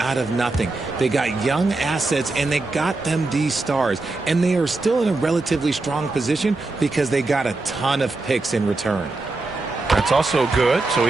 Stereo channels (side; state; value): left; quieter; 3.3 dB